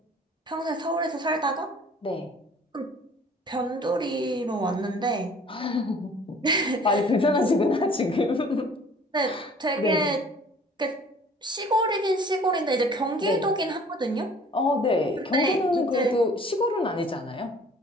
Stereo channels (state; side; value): normal; both; correlation 0.51